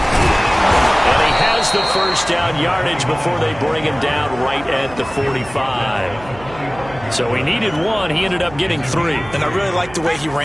he has the first down yardage before they bring him down right at the 45. So he needed one. He ended up getting 3. And I really like the way he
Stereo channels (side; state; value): right; noise; hum, 18 dB below the sound